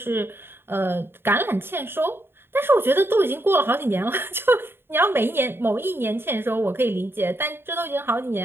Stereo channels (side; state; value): left; late; 0.11 ms